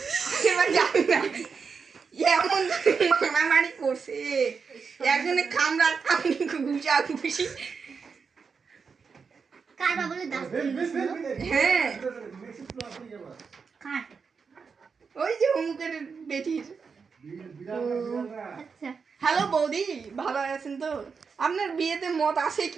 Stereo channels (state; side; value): quieter; left; 5.5 dB